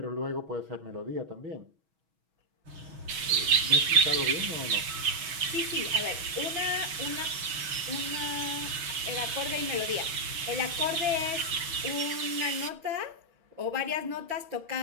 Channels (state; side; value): late; left; 6.2 ms